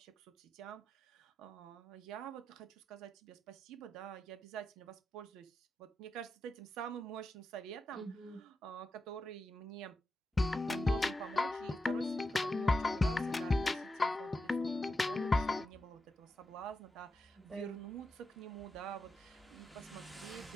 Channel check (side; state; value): both; normal; correlation 0.88